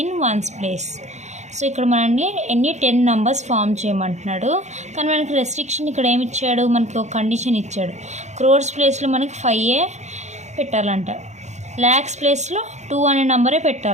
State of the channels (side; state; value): left; late; 0.33 ms